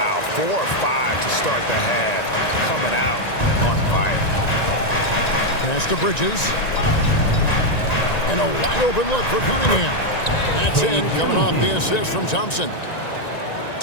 4 or 5 to start the half, coming out on fire. Pass to Bridges. And a wide open look for Cunningham. That's in, coming off the assist from Thompson.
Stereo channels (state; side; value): late; right; 1.9 ms